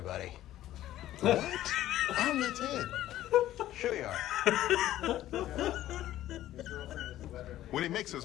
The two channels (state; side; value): quieter; right; 13.7 dB